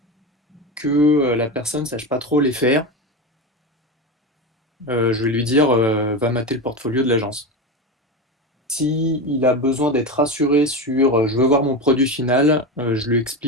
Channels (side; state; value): both; normal; correlation 0.20